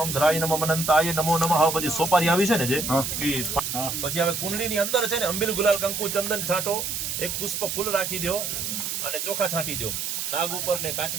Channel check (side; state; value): right; noise; hiss, 3 dB below the sound